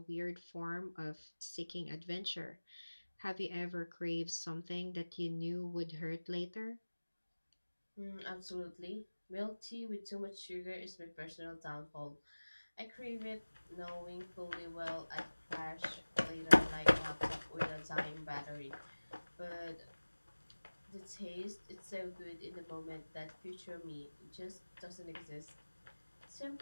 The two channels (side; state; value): both; inverted; correlation -1.00